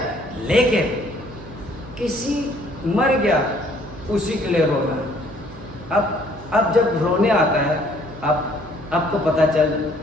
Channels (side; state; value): right; noise; hum, 17 dB below the sound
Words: लेकिन किसी मर गया उसी के लिए रोना। अब जब रोने आता है, आपको पता